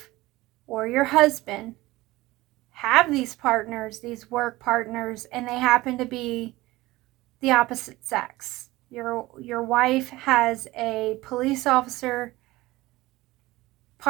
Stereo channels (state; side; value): quieter; left; 18.9 dB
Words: or your husband have these partners, these work partners, and they happen to be the opposite sex. Your wife has a police officer